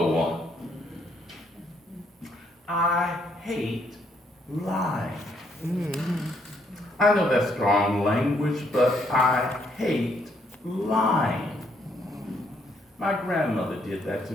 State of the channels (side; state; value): both; normal; correlation 0.71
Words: one. I hate lying. I know that's strong language, but I hate lying. My grandmother did that to